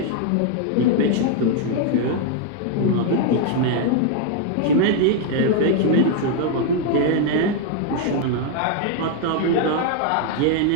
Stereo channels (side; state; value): both; different; correlation 0.00